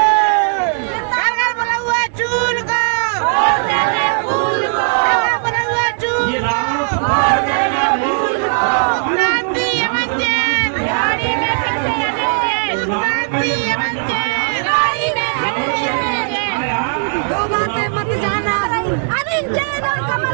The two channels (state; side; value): silent; left; digital silence